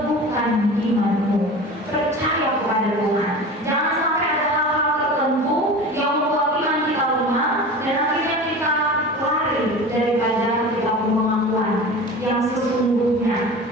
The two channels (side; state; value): both; normal; correlation 0.34